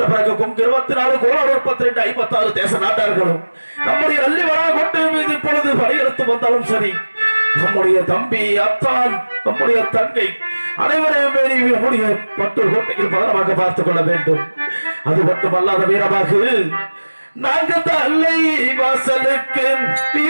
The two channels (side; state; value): both; inverted; correlation -1.00